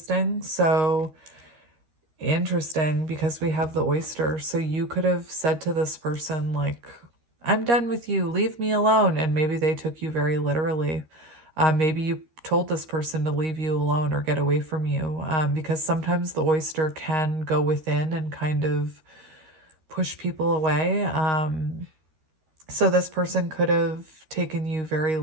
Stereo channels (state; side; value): late; left; 13 ms